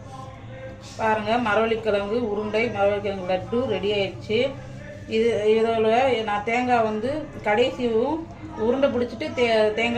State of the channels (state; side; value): identical; both; correlation 1.00